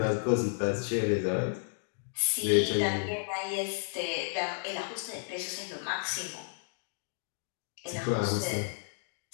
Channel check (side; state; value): right; silent; digital silence